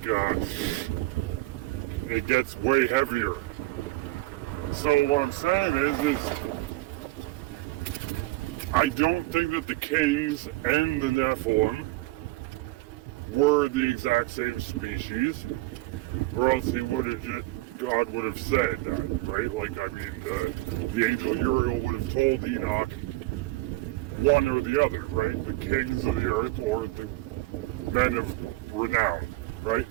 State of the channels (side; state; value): left; quieter; 19.7 dB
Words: it gets way heavier. So what I'm saying is I don't think that the kings and the Nephilim were the exact same species, or else God would have said that, right? The angel Uriel would have told Enoch one or the other, right? The kings of the earth or the men of renown, right?